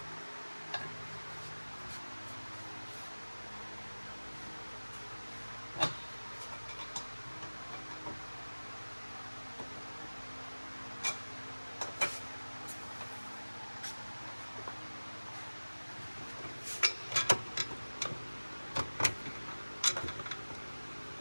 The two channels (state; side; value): inverted; both; correlation -1.00